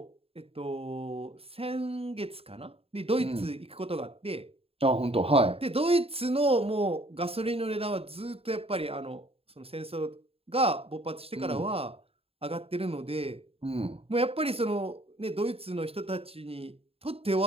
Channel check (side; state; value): left; late; 0.28 ms